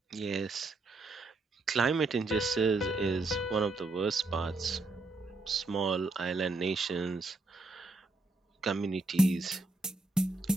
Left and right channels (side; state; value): left; quieter; 3.2 dB